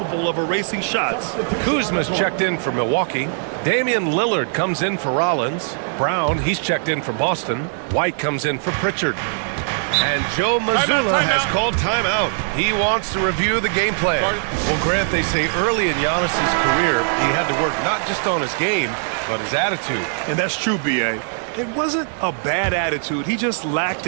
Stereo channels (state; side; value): silent; left; digital silence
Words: of erasing shots. Kuzma's checked in for Milwaukee. Damian Lillard comes in for Rollins. Brown, he's checked in for Boston. White comes in for Pritchard. And Joe Mazzulla has called timeout. He wants to review the game plan. Well, Grant, they say early in Giannis's career, he had to work not just on his game, but his attitude. And that's true, B.A. It wasn't a bad attitude. He just lacked